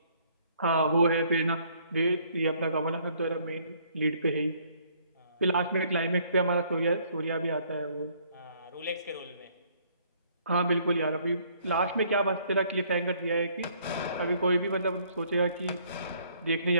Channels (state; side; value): inverted; both; correlation -0.64